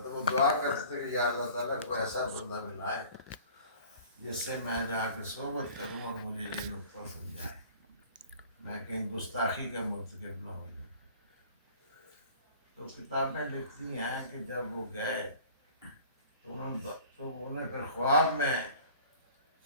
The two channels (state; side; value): inverted; both; correlation -0.47